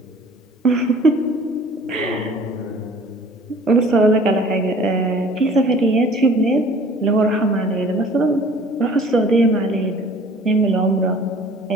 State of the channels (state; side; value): normal; both; correlation 0.50